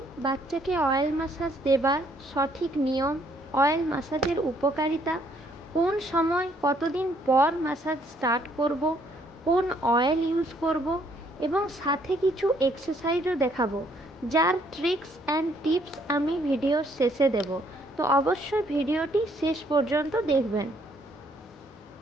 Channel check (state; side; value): normal; both; correlation 0.67